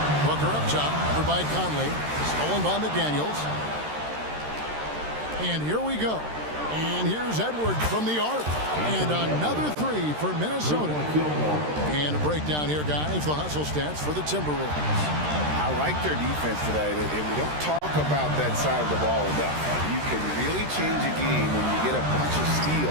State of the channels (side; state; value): left; late; 13 ms